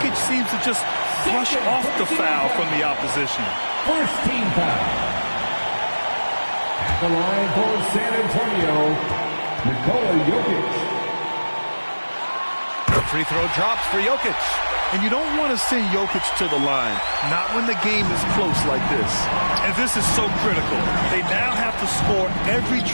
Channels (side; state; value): both; inverted; correlation -1.00